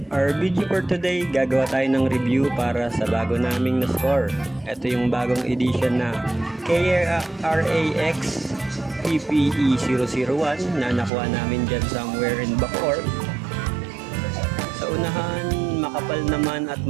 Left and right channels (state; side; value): drops out; left; at 11.1 s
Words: our video for today, gagawa tayo ng review para sa bago naming na-score. Ito yung bagong edition na KRAX PPE001 na nakuha namin dyan somewhere in Bacoor. Sa unahan, makapal naman at